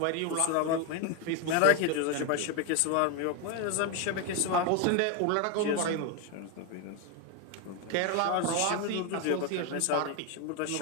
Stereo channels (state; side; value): different; both; correlation 0.01